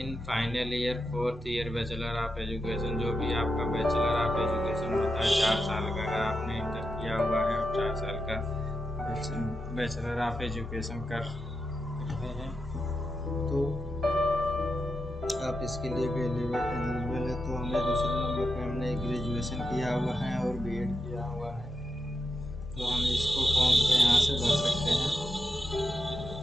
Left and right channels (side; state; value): both; normal; correlation 0.87